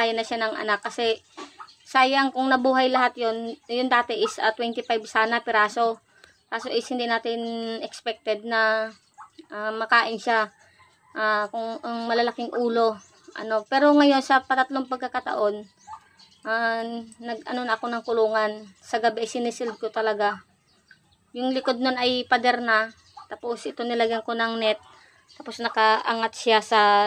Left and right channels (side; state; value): both; identical; correlation 1.00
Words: na siya ng anak kasi sayang kung nabuhay lahat yon. Yung dati is 25 sana piraso. Kaso is hindi natin expected na makain siya kung ang malalaking ulo. Pero ngayon sa patatlong pagkakataon, na ako ng kulungan. Sa gabi sinisil ko talaga. Yung likod nun ay pader na. Tapos ito nilagyan ko ng net. Tapos nakaangat siya